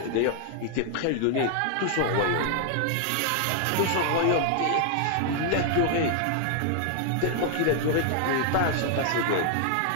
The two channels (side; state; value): both; different; correlation -0.01